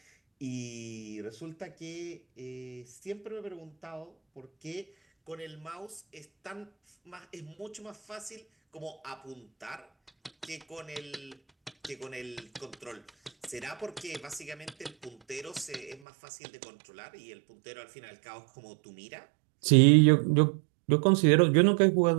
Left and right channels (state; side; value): drops out; left; at 16.0 s